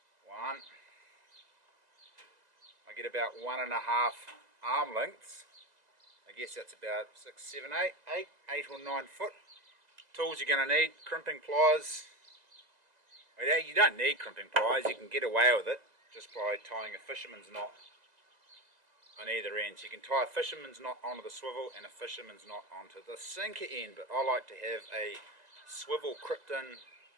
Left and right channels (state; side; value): late; left; 2.0 ms